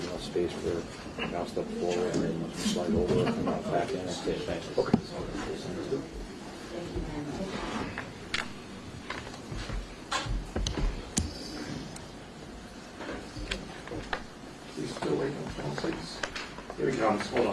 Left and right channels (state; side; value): identical; both; correlation 1.00